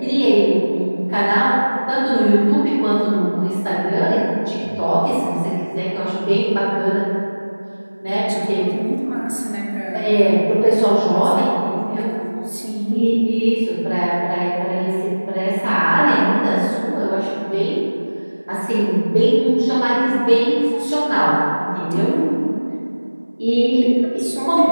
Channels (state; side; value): inverted; both; correlation -1.00